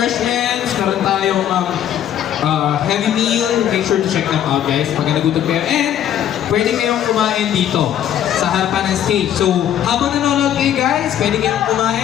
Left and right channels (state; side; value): quieter; right; 10.5 dB